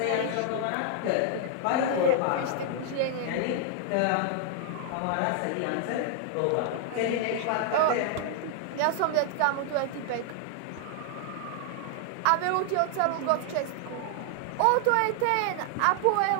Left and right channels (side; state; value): both; different; correlation 0.00